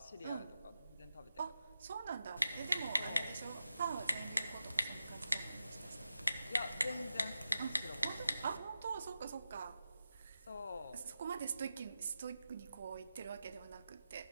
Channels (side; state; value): both; inverted; correlation -0.90